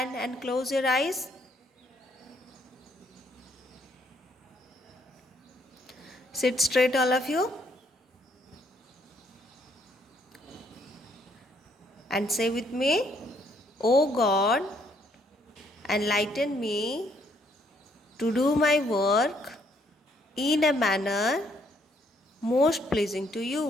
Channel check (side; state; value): both; normal; correlation 0.69